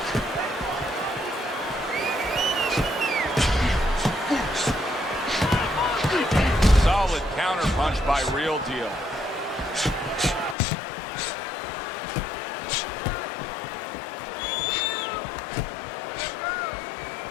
Solid counterpunch by Real Deal.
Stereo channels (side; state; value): right; drops out; at 10.6 s